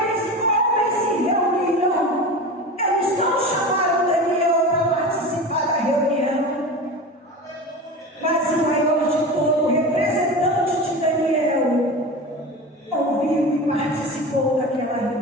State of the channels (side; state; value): both; normal; correlation 0.29